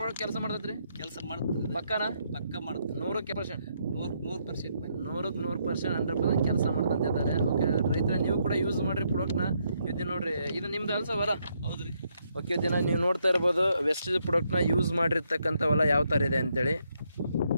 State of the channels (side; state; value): both; inverted; correlation -0.76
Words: ಕೆಲಸ ಮಾಡ್ತೈತ್ರಿ? ಕೆಲಸ ಮಾಡ್ತದೆ. ಪಕ್ಕನಾ? ಪಕ್ಕ ಮಾಡ್ತದೆ. 100% 100% ಕೆಲಸ ಮಾಡ್ತಂತ ಇದ್ದಾರೆ. ಓಕೆ ರೈತರ, ನೀವು ಕೂಡ ಯೂಸ್ ಮಾಡ್ರಿ ಪ್ರಾಡಕ್ಟ್ನ. ಇದು ನೋಡ್ರಿ, ಇದು ನಿಮ್ದು ಅಲ್ಸ ಹೊಲ? ಹೌದ್ರಿ. ಓಕೆ, ದಿನ ನೀವು ನೋಡ್ತಾ ಇರ್ಬೋದು ವೆಸ್ಟೀಸ್ ಪ್ರಾಡಕ್ಟ್ನ ಯೂಸ್ ಮಾಡಿರ್ತಕ್ಕಂಥ ಹೊಲ ಯಾವ ಥರ ಇದೆ ಅಂತೇಳಿ.